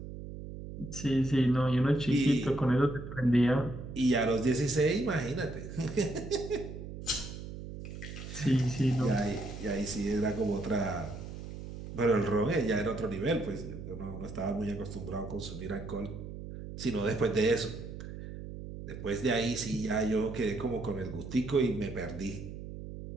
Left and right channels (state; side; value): noise; right; hum, 10 dB below the sound